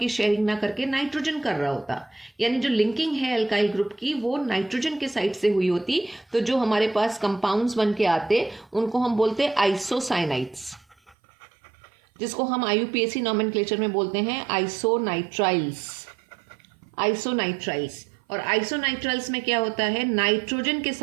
शेयरिंग ना करके नाइट्रोजन कर रहा होता, यानी जो लिंकिंग है एल्काइल ग्रुप की वो नाइट्रोजन के साइड से हुई होती, तो जो हमारे पास कंपाउंड्स बन के आते उनको हम बोलते आइसोसाइनाइड्स, जिसको हम IUPAC नॉमेनक्लेचर में बोलते हैं आइसोनाइट्राइल्स। और आइसोनाइट्राइल्स में क्या होता है, नाइट्रोजन के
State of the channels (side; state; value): left; drops out; at 11.2 s